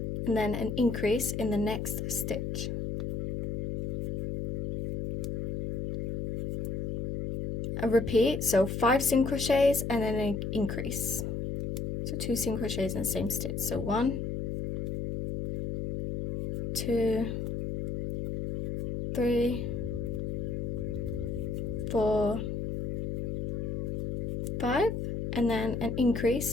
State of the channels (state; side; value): noise; left; hum, 2 dB below the sound